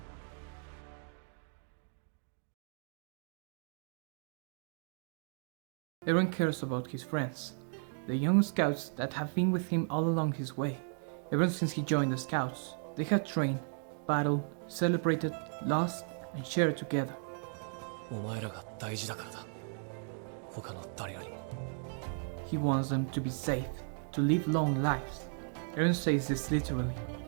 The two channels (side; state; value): left; silent; 54 dB below the other